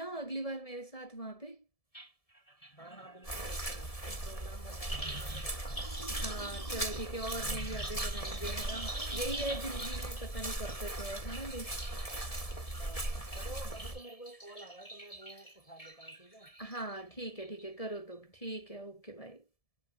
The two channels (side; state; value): right; late; 1.7 ms